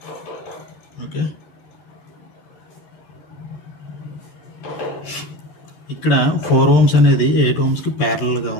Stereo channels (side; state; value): right; late; 13 ms